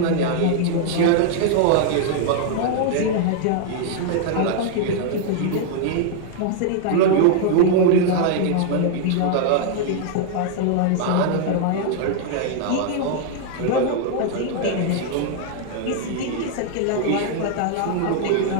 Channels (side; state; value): both; different; correlation -0.01